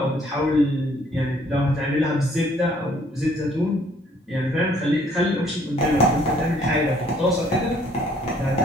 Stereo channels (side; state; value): both; normal; correlation 0.61